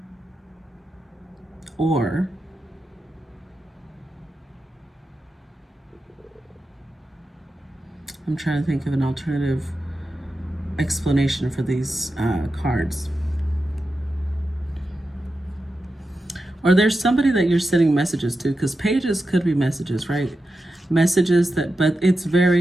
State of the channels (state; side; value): normal; both; correlation 0.90